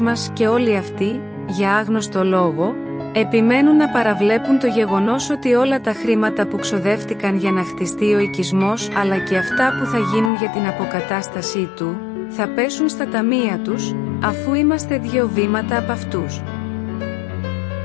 και όλοι αυτοί, για άγνωστο λόγο, επιμένουν να παραβλέπουν το γεγονός ότι όλα τα χρήματα που ξοδεύτηκαν για να χτιστεί ο οικισμός, αλλά και αυτά που θα γίνουν για την αποκατάστασή του, θα πέσουν στα ταμεία τους, αφού είμαστε 2 βήματα από αυτούς.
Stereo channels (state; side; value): drops out; right; at 10.3 s